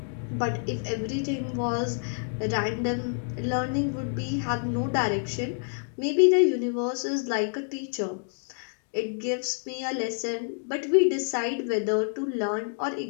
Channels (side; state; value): right; silent; 59 dB below the other